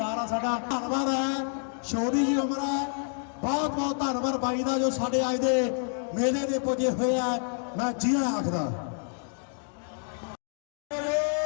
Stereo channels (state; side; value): silent; right; 56 dB below the other